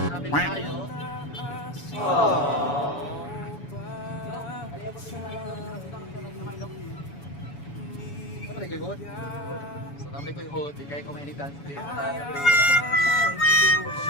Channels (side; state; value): right; late; 7.1 ms